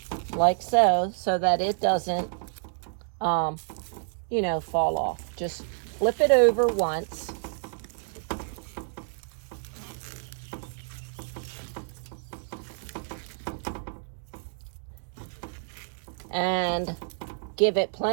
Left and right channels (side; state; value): left; silent; digital silence